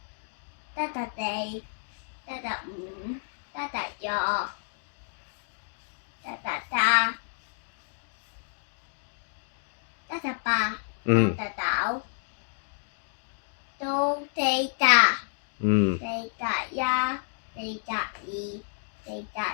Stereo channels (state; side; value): silent; right; 58 dB below the other